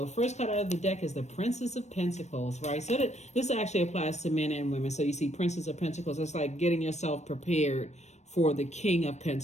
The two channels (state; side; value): late; right; 0.33 ms